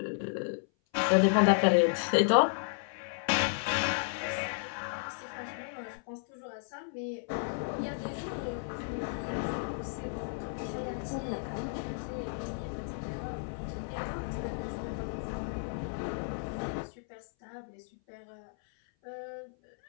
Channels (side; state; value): right; silent; 56 dB below the other